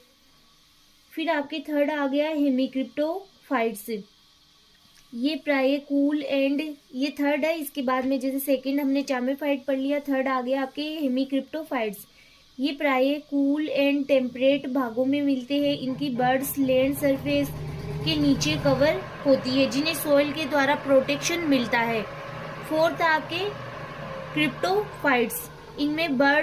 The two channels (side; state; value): both; identical; correlation 1.00